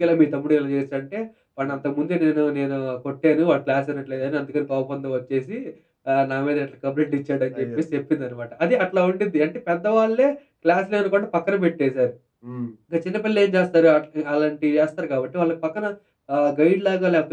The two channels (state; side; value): identical; both; correlation 1.00